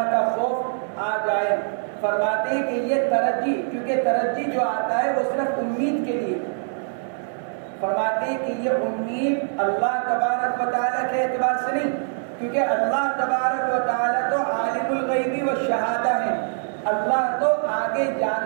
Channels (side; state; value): left; silent; 60 dB below the other